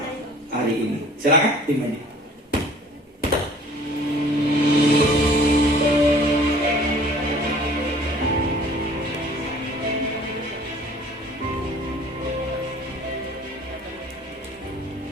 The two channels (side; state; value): both; normal; correlation 0.51